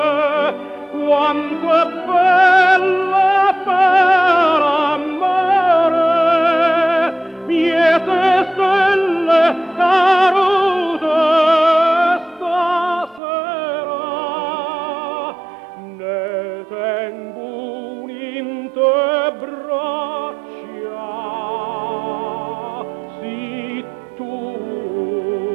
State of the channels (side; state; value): left; drops out; at 13.2 s